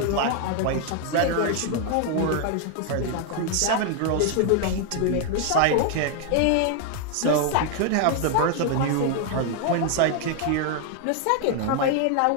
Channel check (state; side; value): different; both; correlation 0.00